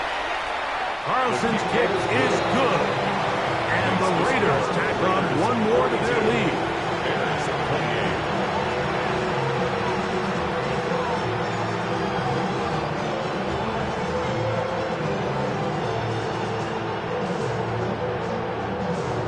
Carlson's kick is good. And the Raiders tack on one more to their lead.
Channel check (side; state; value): both; identical; correlation 1.00